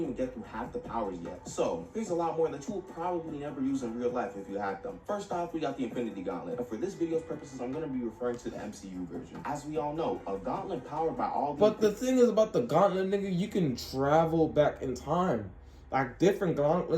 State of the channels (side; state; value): both; identical; correlation 1.00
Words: even get through half the powers yet. So here's a lot more that you will probably never use in real life if you had them. First off, we got the Infinity Gauntlet. And for this video's purposes, I'm going to be referring to the MCU version. As we all know, a gauntlet powered by all the... But the thing is about the gauntlet, nigga, you can travel back in time. Like, different